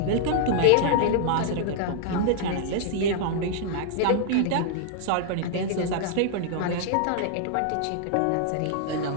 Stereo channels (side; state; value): both; different; correlation 0.00